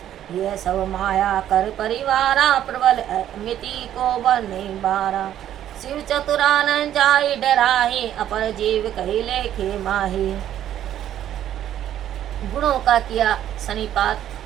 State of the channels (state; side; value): quieter; left; 11.3 dB